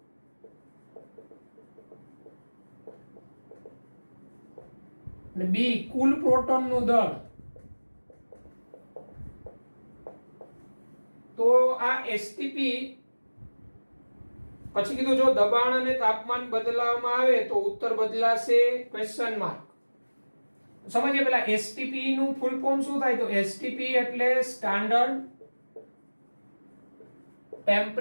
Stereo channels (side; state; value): both; inverted; correlation -1.00